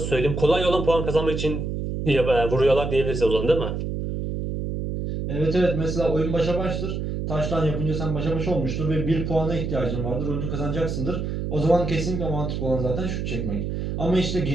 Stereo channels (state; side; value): noise; right; hum, 3 dB below the sound